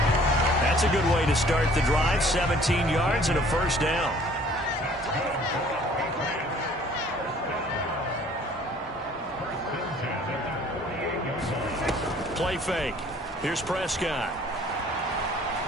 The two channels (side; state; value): both; normal; correlation 0.55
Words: That's a good way to start the drive. 17 yards and a first down. Play fake. Here's Prescott.